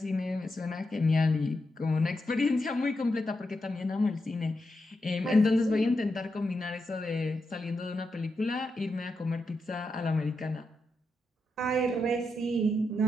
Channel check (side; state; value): both; normal; correlation 0.86